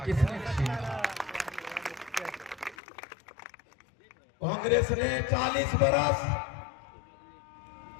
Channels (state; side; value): drops out; right; at 2.8 s